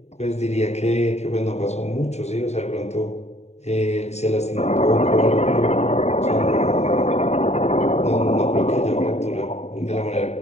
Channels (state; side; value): late; right; 0.32 ms